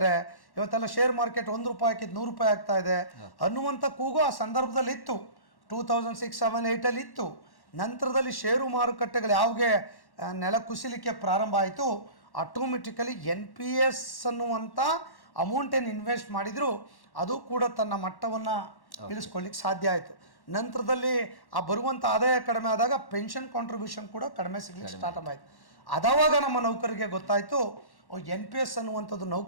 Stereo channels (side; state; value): right; late; 1.1 ms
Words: ಇವತ್ತೆಲ್ಲ ಶೇರ್ ಮಾರ್ಕೆಟ್ 1 ರೂಪಾಯಿ ಹಾಕಿದ್ದು 100 ರೂಪಾಯಿ ಆಗ್ತಾ ಇದೆ ಅನ್ನುವಂಥ ಕೂಗು ಆ ಸಂದರ್ಭದಲ್ಲಿ ಇತ್ತು. 2006, 7, 8 ಇತ್ತು. ನಂತರದಲ್ಲಿ ಷೇರು ಮಾರುಕಟ್ಟೆಗಳು ಯಾವಾಗೆ ನೆಲ ಕುಸಿಲಿಕ್ಕೆ ಪ್ರಾರಂಭ ಆಯಿತು, ಆಟೋಮೆಟಿಕಲಿ NPS ಅನ್ನುವಂಥ ಅಮೌಂಟ್ ಏನು ಇನ್ವೆಸ್ಟ್ ಮಾಡಿದ್ರು ಅದು ಕೂಡ ತನ್ನ ಮಟ್ಟವನ್ನು ಇಳಿಸ್ಕೊಳ್ಳಿಕ್ಕೆ ಸಾಧ್ಯ ಆಯಿತು. ನಂತರದಲ್ಲಿ ಆ ಬರುವಂಥ ಆದಾಯ ಕಡಿಮೆ ಆದಾಗ ಪೆನ್ಷನ್ ಕಾಂಟ್ರಿಬ್ಯೂಷನ್ ಕೂಡ ಕಡಿಮೆ ಸಿಗ್ಲಿಕ್ಕೆ ಸ್ಟಾರ್ಟ್ ಆಯಿತು. ಅದಾವಾಗ ನಮ್ಮ ನೌಕರಿಗೆ ಗೊತ್ತಾಯಿತು, NPS ಅನ್ನುವಂಥದ್ದು